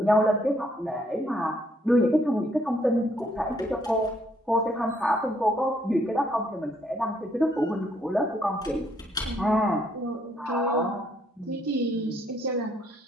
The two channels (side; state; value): both; normal; correlation 0.69